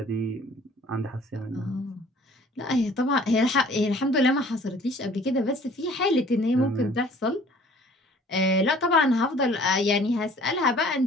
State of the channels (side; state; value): both; normal; correlation 0.53